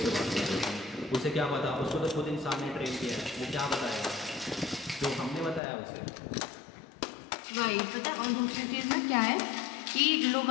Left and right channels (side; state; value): right; drops out; at 5.6 s